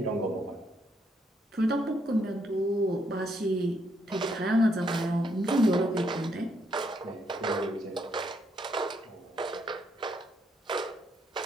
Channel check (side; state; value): both; normal; correlation 0.74